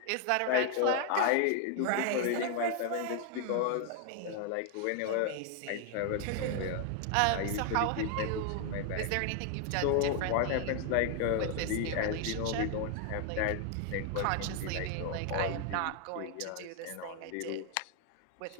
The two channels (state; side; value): different; both; correlation 0.00